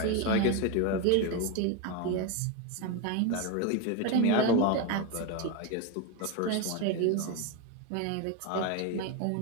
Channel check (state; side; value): different; both; correlation 0.02